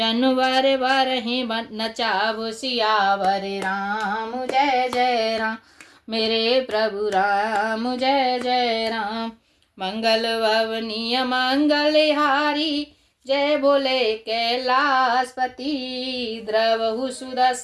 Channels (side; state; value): both; identical; correlation 1.00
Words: वर ही नचाव। सियावर राम जय जय राम मेरे प्रभु राम जय जय राम। मंगल भवनीय मंगलहारी जय बोले कैलाशपति। द्रवहु